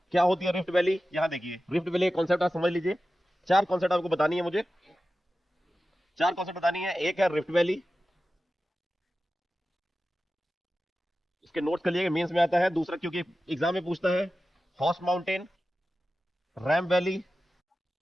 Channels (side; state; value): both; normal; correlation 0.94